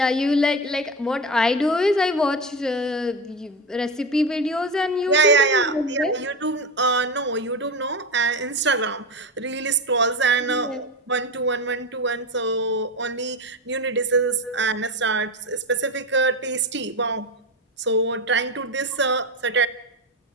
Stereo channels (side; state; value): both; normal; correlation 0.19